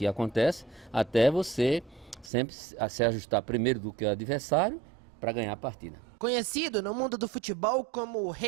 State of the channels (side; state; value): left; drops out; at 2.3 s